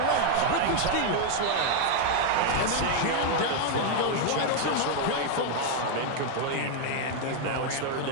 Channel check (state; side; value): different; both; correlation 0.00